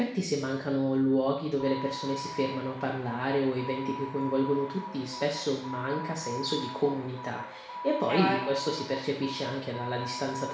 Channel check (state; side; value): identical; both; correlation 1.00